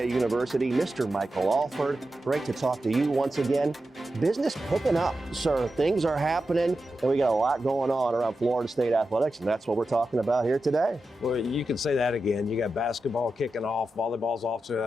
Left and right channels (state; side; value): normal; both; correlation 0.91